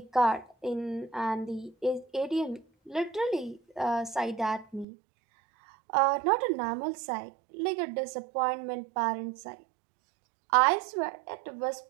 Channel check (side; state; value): left; drops out; at 4.9 s